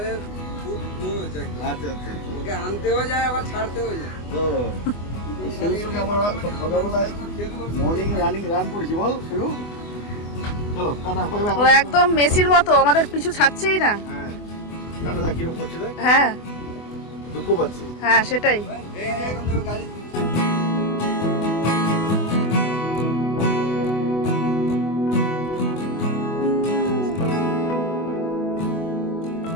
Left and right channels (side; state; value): right; late; 24 ms